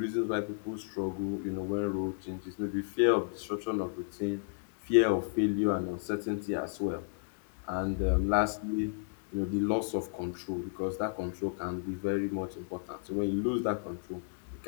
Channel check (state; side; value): silent; right; digital silence